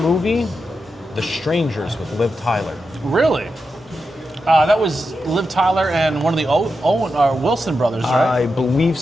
movie, The Strangers with Liv Tyler. Really? That was Liv Tyler and one of the Owen or Wilson brothers, right? I believe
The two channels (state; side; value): normal; both; correlation 0.88